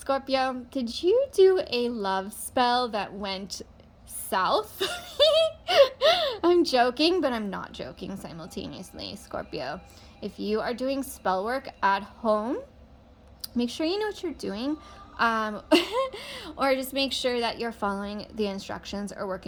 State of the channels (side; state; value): both; identical; correlation 1.00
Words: did you do a love spell that went south? I'm joking, but I'm not joking simultaneously, Scorpio. If you are doing spell work at home, make sure you know what you're doing, or just make sure that you're following the instructions or